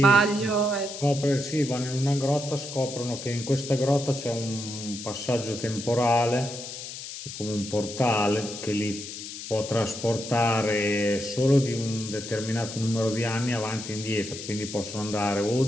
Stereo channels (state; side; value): noise; left; hiss, 10 dB below the sound